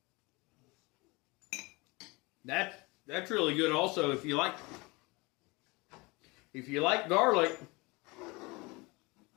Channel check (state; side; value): quieter; right; 25.3 dB